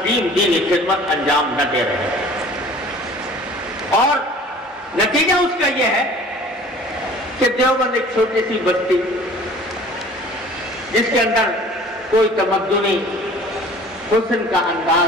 دینی خدمت انجام نہ دے رہے ہیں۔ اور نتیجہ اس کا یہ ہے کہ دیوبند ایک چھوٹی سی بستی جس کے اندر کوئی تمدنی حسن کا انداز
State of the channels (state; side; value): normal; both; correlation 0.48